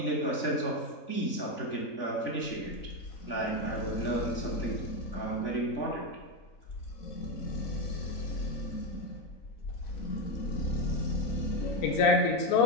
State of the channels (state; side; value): late; right; 3.4 ms